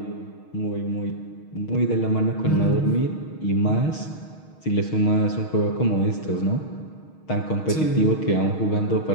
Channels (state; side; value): late; right; 6.4 ms